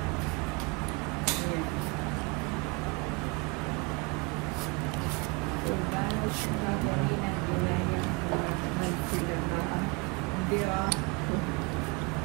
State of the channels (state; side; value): quieter; left; 27.6 dB